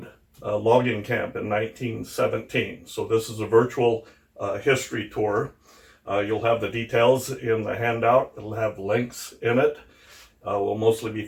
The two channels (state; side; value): identical; both; correlation 1.00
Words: logging camp in 1917. So this is a virtual history tour. You'll have the details in the handout. It'll have links in it. We'll mostly be